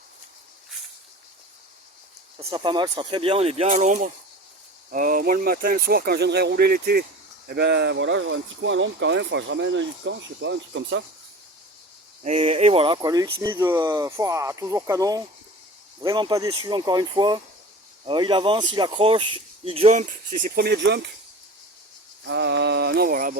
Ça sera pas mal, ça sera très bien, on est bien à l'ombre. Moi, le matin, le soir, quand je viendrai rouler l'été, eh ben voilà, j'aurai un petit coin à l'ombre quand même. Enfin, je ramène un lit de camp, je sais pas, un truc comme ça. Et voilà, quoi, le X-Mid, toujours canon. Vraiment pas déçu, encore une fois. Il avance, il accroche, il jump, c'est ses premiers jumps. Non, voilà,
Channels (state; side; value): normal; both; correlation 0.37